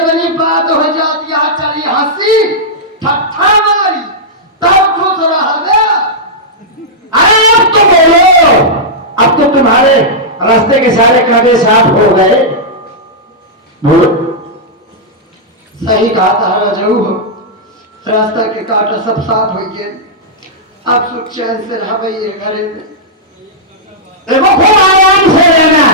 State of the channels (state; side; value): normal; both; correlation -0.09